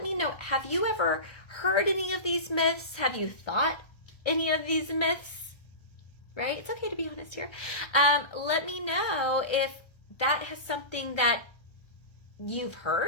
me know, have you ever heard any of these myths? Have you thought any of these myths? Right? It's okay to be honest here. Let me know if that has something that you've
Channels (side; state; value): right; late; 1.3 ms